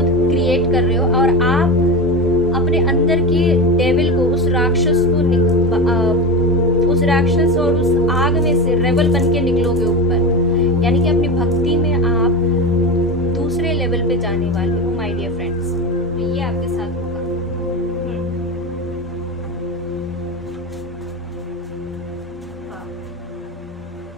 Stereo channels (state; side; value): normal; both; correlation 0.21